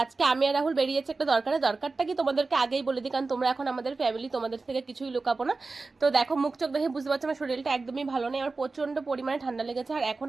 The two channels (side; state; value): left; quieter; 3.8 dB